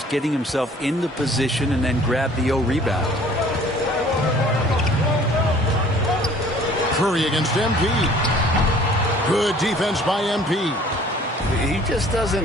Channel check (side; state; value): both; normal; correlation 0.53